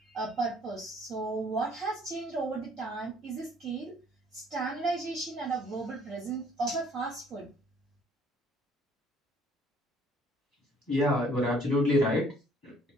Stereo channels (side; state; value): both; normal; correlation 0.59